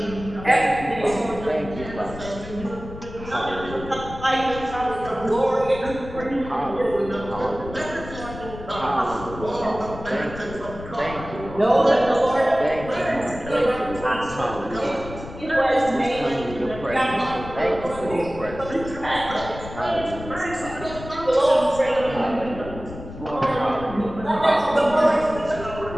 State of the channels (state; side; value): noise; left; rumble, 12 dB below the sound